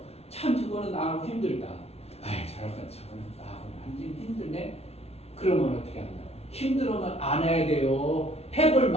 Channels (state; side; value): late; right; 0.30 ms